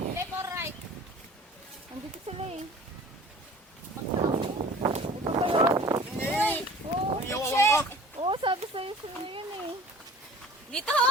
or right? Andito sila eh. Uy! Oo, Ang iyawawan ka. oo, sabi sa'yo sila yun eh. Dito!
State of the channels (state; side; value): normal; both; correlation 0.46